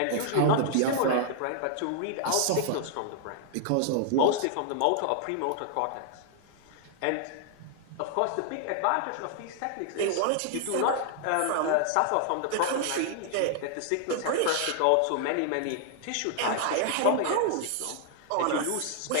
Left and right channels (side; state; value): both; different; correlation -0.01